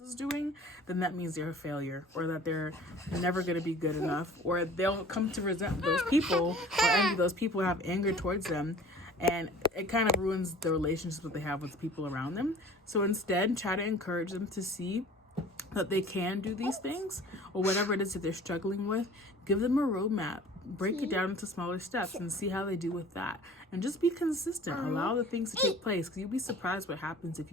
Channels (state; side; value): normal; both; correlation 0.46